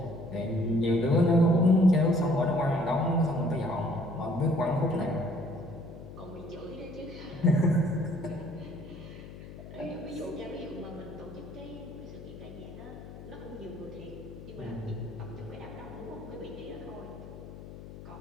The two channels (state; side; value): noise; left; hum, 14 dB below the sound